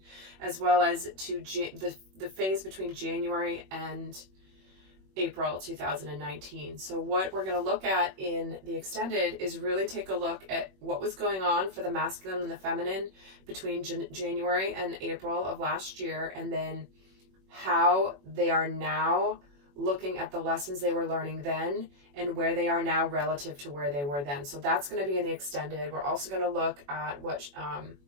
as well as to the phase between January and April 2019. So what we're going to look at in the extended is really take a look at what was going on for the masculine and the feminine between January and April of last year, and then how they are now looking at the lessons they were learning then and where they are now relative to where they were then. So that's going to be in the extended. We're also going to look at what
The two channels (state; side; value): late; left; 21 ms